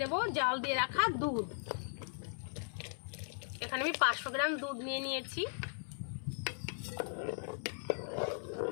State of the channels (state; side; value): silent; right; 53 dB below the other